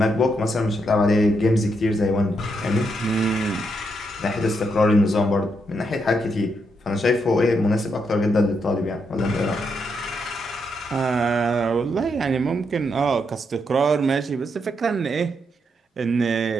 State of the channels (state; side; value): normal; both; correlation 0.79